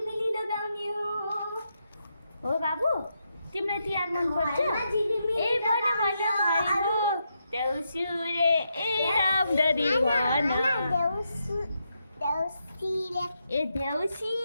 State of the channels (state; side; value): inverted; both; correlation -0.83